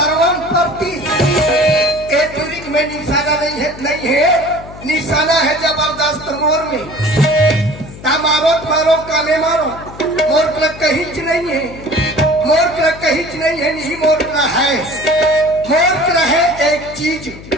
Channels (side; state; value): left; noise; hum, 16 dB below the sound